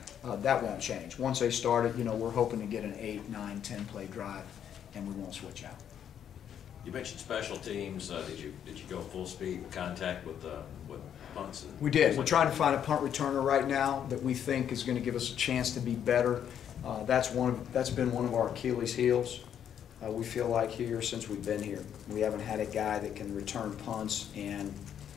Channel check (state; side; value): quieter; right; 9.2 dB